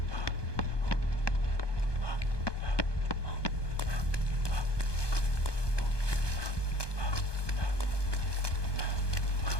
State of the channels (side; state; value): right; late; 1.2 ms